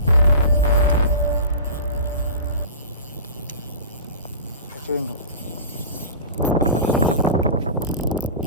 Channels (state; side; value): inverted; both; correlation -0.34